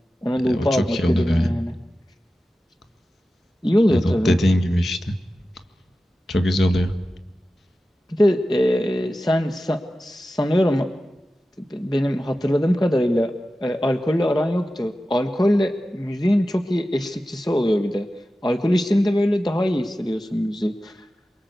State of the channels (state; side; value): normal; both; correlation 0.94